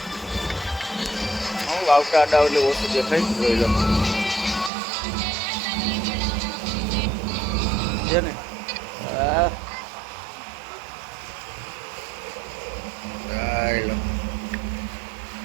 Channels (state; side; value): drops out; left; at 4.7 s